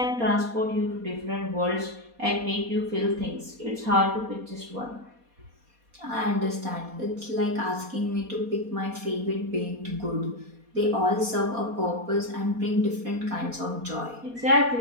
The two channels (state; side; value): late; left; 4.2 ms